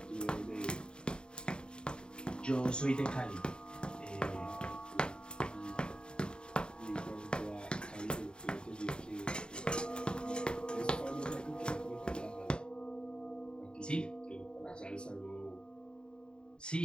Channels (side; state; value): right; late; 0.050 ms